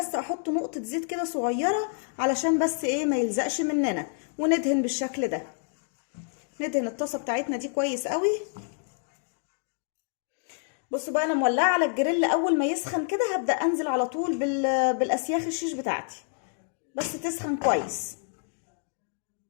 احط نقطه زيت كده صغيره علشان بس ايه ما يلزقش مننا، وندهن بالشكل ده. ندهن الطاسه بتاعتنا دي كويس قوي. بصوا بقى انا مولعه على الجريل، اول ما يسخن كده هبدا انزل على طول بالاسياخ الشيش بتاعتي، بس تسخن كويس.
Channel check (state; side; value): silent; right; digital silence